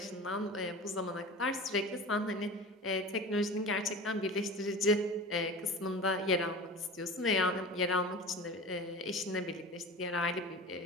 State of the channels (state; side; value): normal; both; correlation 0.34